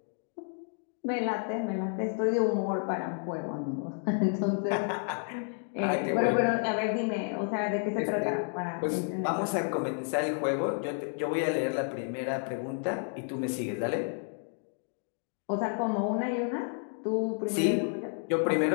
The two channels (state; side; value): silent; right; 57 dB below the other